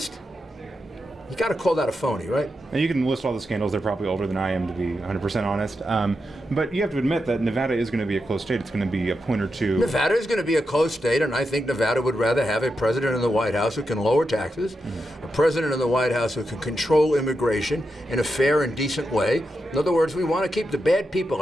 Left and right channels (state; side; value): normal; both; correlation 0.87